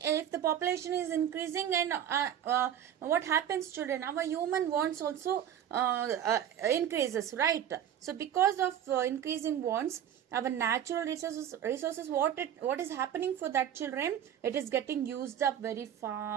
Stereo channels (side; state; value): left; quieter; 9.9 dB